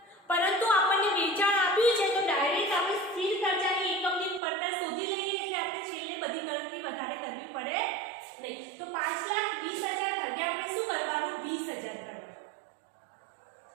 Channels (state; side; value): drops out; left; at 4.4 s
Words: પરંતુ આપણને વેચાણ આપ્યું છે તો ડાયરેક્ટ આપણે સ્થિર ખર્ચાની એકમની પડતર શોધી લઈએ એટલે આપણે છેલ્લે બધી ગણતરી વધારે કરવી પડે નહીં. તો 5,20,000 ભાગ્યા આપણે શું કરવાનું? 20,000 કરવાનું.